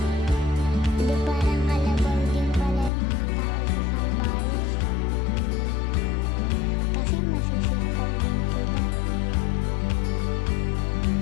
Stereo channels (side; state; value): right; drops out; at 2.9 s